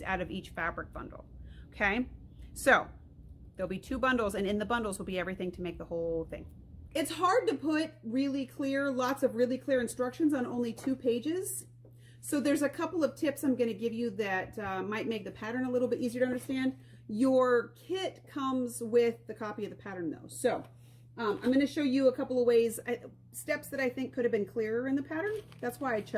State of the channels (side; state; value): both; identical; correlation 1.00